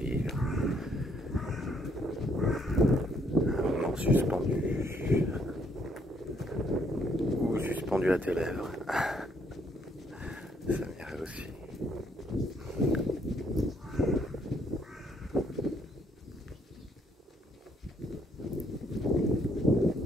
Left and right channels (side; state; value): both; normal; correlation 0.70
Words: un moment suspendu ou suspendu à tes lèvres. Ça m'irait aussi.